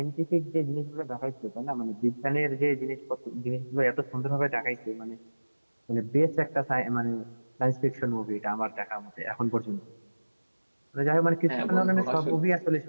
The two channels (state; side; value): inverted; both; correlation -1.00